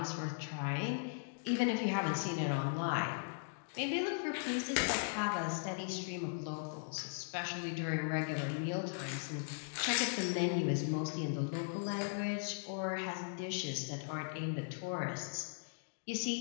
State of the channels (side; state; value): right; silent; digital silence